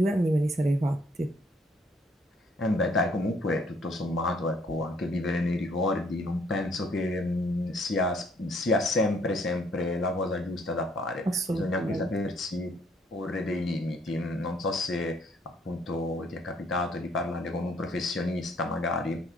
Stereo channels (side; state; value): both; normal; correlation 0.64